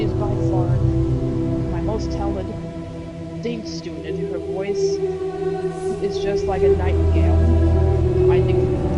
is by far my most talented student. Her voice is just like a nightingale. I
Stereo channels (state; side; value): identical; both; correlation 1.00